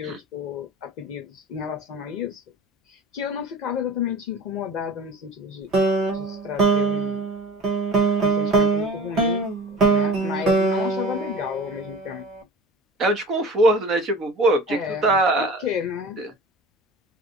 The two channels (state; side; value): normal; both; correlation 0.38